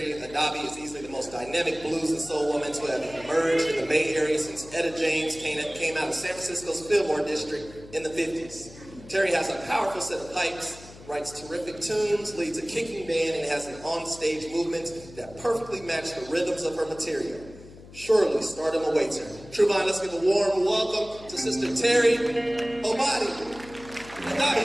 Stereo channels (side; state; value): left; noise; hum, 19 dB below the sound